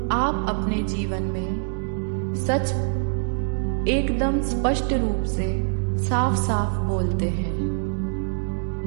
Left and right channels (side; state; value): left; silent; 62 dB below the other